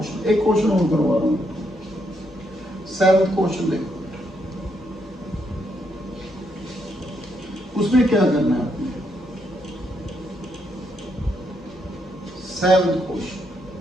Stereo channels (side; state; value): both; normal; correlation 0.77